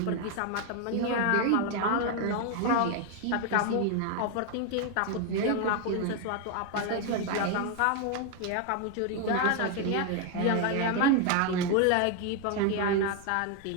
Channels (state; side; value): different; both; correlation 0.01